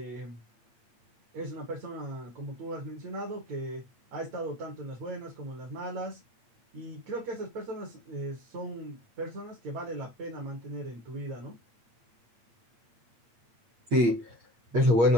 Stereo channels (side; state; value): left; late; 8.5 ms